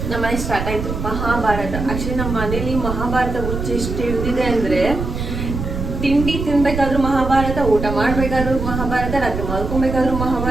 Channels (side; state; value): right; noise; rumble, 5 dB below the sound